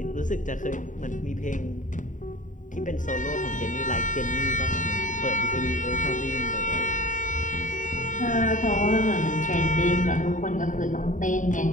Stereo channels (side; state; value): right; late; 0.37 ms